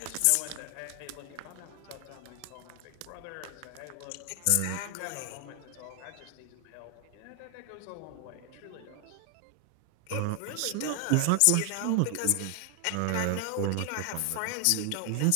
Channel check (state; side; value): different; both; correlation 0.00